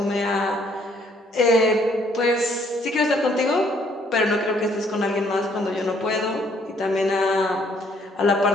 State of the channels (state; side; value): normal; both; correlation 0.65